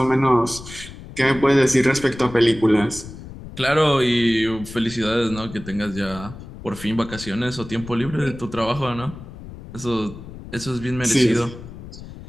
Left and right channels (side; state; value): left; noise; rumble, 14 dB below the sound